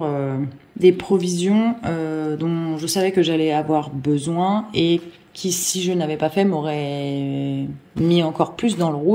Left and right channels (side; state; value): both; identical; correlation 1.00